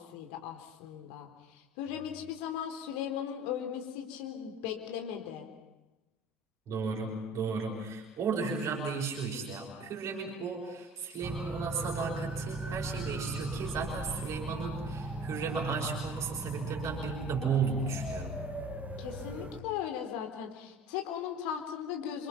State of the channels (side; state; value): both; normal; correlation 0.43